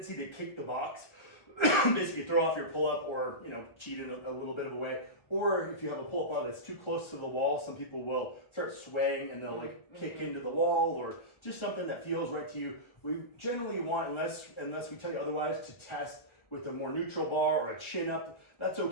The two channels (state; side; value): late; right; 1.3 ms